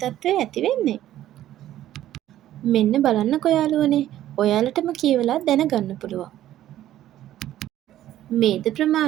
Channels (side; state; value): left; quieter; 12.9 dB